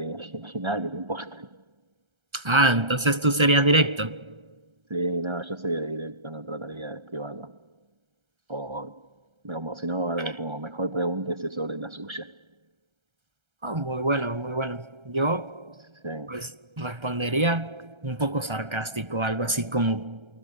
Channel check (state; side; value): late; left; 1.3 ms